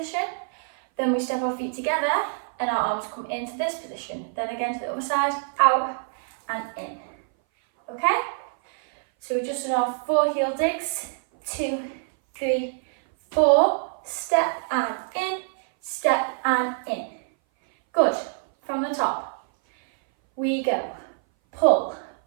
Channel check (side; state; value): left; silent; 58 dB below the other